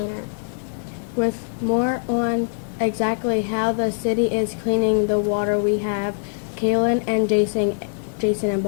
With more on exactly how the city is cleaning the water, we have Kaelyn and Jason in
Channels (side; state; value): right; silent; digital silence